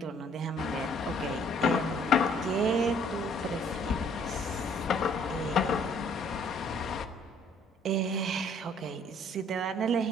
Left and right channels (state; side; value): normal; both; correlation 0.61